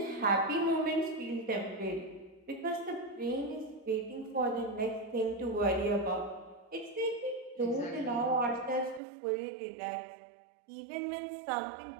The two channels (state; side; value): drops out; left; at 9.0 s